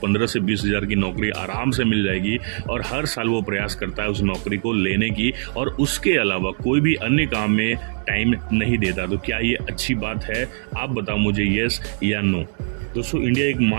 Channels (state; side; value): silent; left; digital silence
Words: से 20 हज़ार की नौकरी आराम से मिल जाएगी, और हर साल वो प्रयास करता है उस नौकरी को लेने की, और उसके अलावा कोई भी अन्य काम में टाइम नहीं देता। तो क्या ये अच्छी बात है? आप बताओ मुझे, येस या नो। दोस्तों, इंडिया